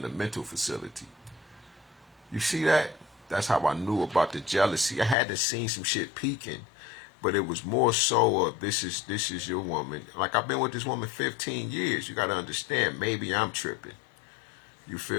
a mental facility. You see that? That's how I knew about the jealousy. I had to see some shit peaking, but it was more so of this is your woman. Like I've been with this woman 15 years. You got to understand, maybe I'm tripping. You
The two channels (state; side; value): drops out; right; at 5.2 s